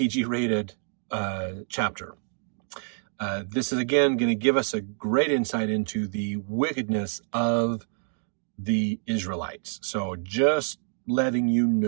chapter. This is, again, going to give us a great insight into the wickedness of the Israelites. So just letting you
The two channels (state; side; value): silent; left; 56 dB below the other